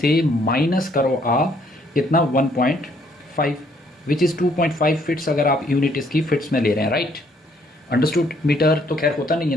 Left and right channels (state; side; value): normal; both; correlation 0.66